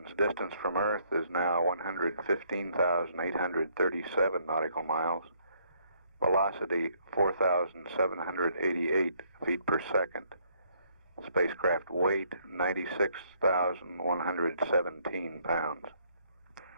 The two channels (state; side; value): inverted; both; correlation -0.68